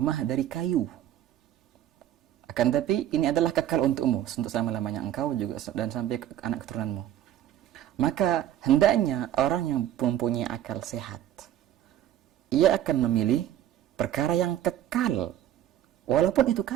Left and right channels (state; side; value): quieter; left; 11.7 dB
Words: dari kayu, akan tapi ini adalah kekal untukmu untuk selama-lamanya engkau juga dan sampai ke anak keturunanmu. Maka hendaknya orang yang mempunyai akal sehat, ia akan memilih perkara yang kekal walaupun itu